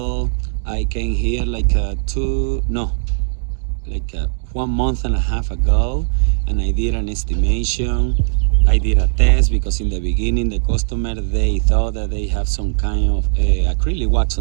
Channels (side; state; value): left; silent; digital silence